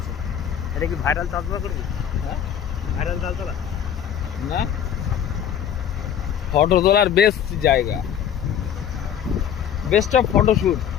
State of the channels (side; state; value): right; quieter; 9.1 dB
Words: এটা কি ভাইরাল চাষবা করবি? হ্যাঁ, ভাইরাল চাল চালা না ফটো তোলার বেস্ট জায়গা, বেস্ট অফ ফটোশুট।